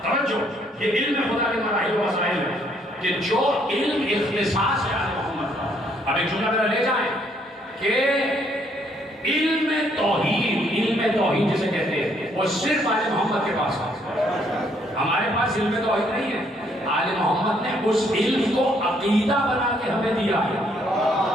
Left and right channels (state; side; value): normal; both; correlation 0.68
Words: توجہ، یہ علم خدا کے مراحل و مسائل ہے کہ جو علم اختصاص ہے آل محمد کا۔ اب ایک جملہ میرا لے جائیں کہ علم توحید جسے کہتے ہیں وہ صرف آل محمد کے پاس ہے، ہمارے پاس علم توحید نہیں ہے۔ آل محمد نے اس علم کو عقیدہ بنا کے ہمیں دیا ہے۔